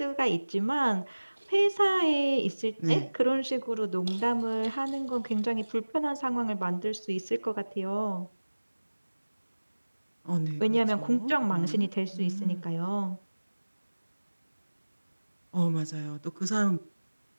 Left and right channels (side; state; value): both; inverted; correlation -1.00